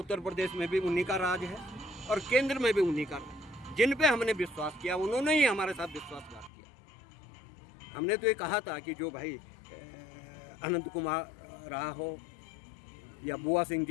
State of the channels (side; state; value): right; drops out; at 6.5 s